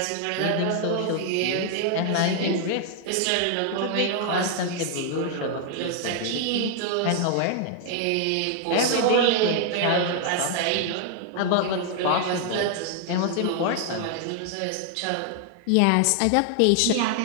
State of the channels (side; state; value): both; different; correlation 0.00